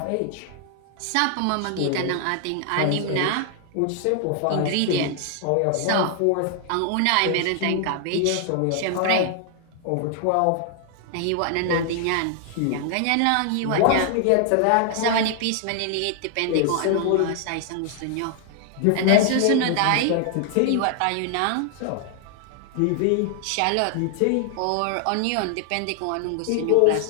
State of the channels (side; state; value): both; different; correlation 0.00